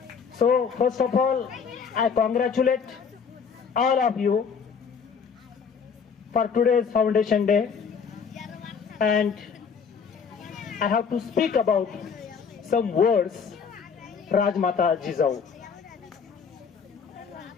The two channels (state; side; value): quieter; right; 6.2 dB